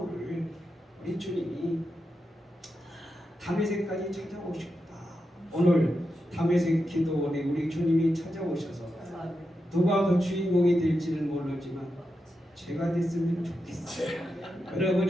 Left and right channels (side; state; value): both; normal; correlation 0.87